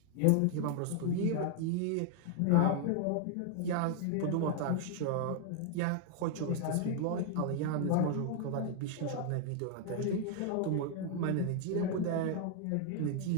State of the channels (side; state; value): both; different; correlation 0.00